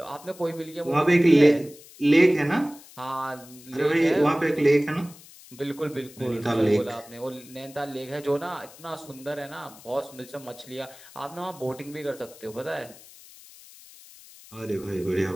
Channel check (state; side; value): noise; left; hiss, 21 dB below the sound